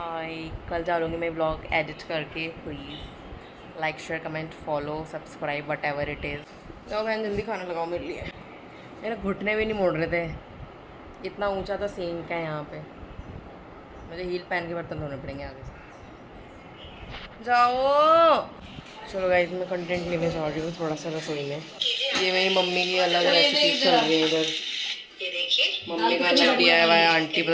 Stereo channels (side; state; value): both; identical; correlation 1.00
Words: कल डालूँगी मैं ब्लॉग एडिट करके। Please like, share, comment, follow, subscribe, what ever it is. तो बहन जल्दी खाना लगाओ मेरे लिए, मेरे घुटने भी नहीं मोड़ रहे थे, इतना ऊँचा तो सिंक है यहाँ पे, मुझे हील पहन के बर्तन धोने पड़ेंगे आगे से। जाओ चलो गाइस, मैं कंटेंट लेने जा रही हूँ थोड़ा सा रसोई में। ये मेरी मम्मी की अलग रेसिपी चल रही है इधर, मम्मी का अलग दिया है, आंटी